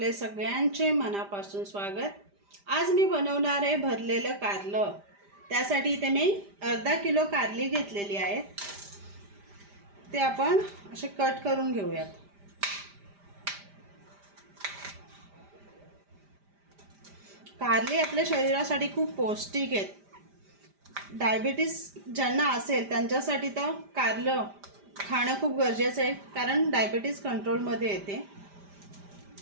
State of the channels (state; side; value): late; left; 5.0 ms